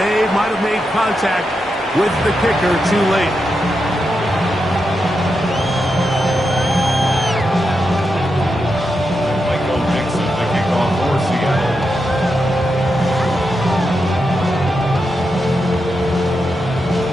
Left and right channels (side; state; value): both; normal; correlation 0.86